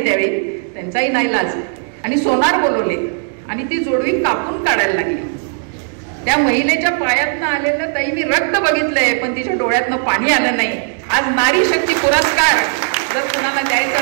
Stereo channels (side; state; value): left; silent; 60 dB below the other